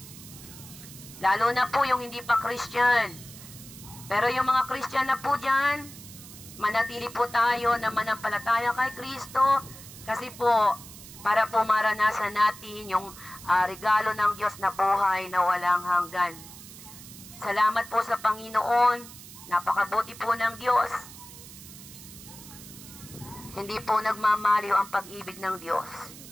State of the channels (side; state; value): right; noise; hiss, 16 dB below the sound